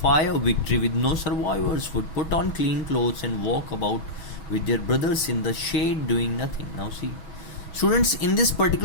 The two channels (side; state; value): right; late; 6.2 ms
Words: fire, victory with no survivors, would put on clean clothes and walk about with their brothers in the shade doing nothing. Now see, students, in this